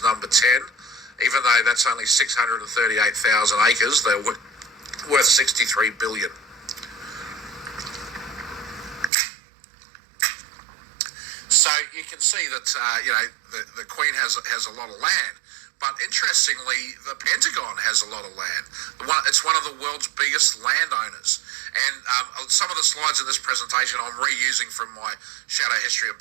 number 10. Even though that's only 638,000 acres, they're worth 63 billion. So you can see that the Queen has a lot of land. But interestingly, the Pentagon has a lot of land. It's one of the world's biggest landowners. And some of the slides in this presentation I'm reusing from my Shadow History of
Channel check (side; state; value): left; drops out; at 9.1 s